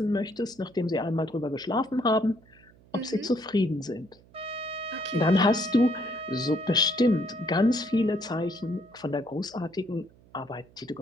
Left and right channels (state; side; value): noise; right; hum, 27 dB below the sound